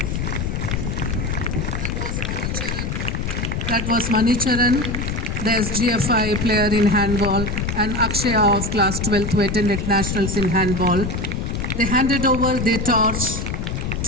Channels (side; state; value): left; noise; rumble, 3 dB below the sound